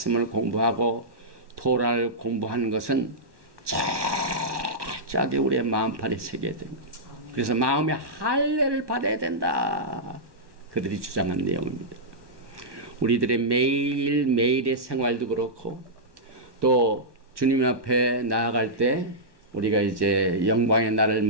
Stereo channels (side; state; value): left; late; 1.2 ms